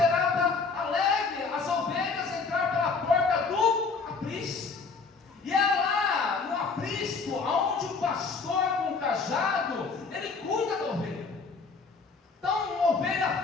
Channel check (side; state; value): right; quieter; 4.7 dB